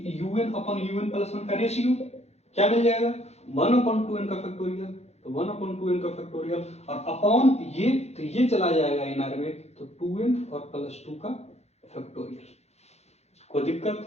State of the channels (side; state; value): right; late; 0.31 ms